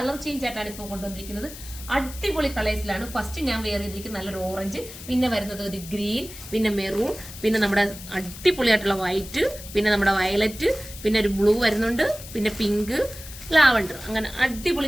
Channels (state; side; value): noise; left; hiss, 14 dB below the sound